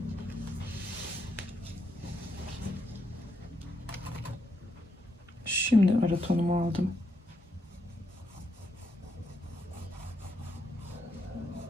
Şimdi ara tonumu aldım.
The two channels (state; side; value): normal; both; correlation 0.79